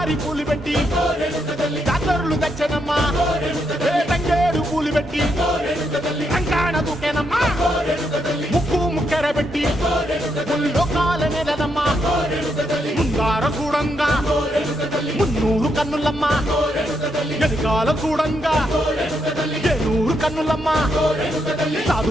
పూలు పెట్టి జాతరులు తెచ్చానమ్మా తంగేడు పూలు పెట్టి రంగాణ దూకేనమ్మా ముక్కు ముక్కెర పెట్టి ముల్లోకాల నెలనమ్మా ముందార చూడంగా మున్నూరు కన్నులమ్మా ఎనకాల చూడంగా ఏనూరు కన్నులమ్మా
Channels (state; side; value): normal; both; correlation 0.79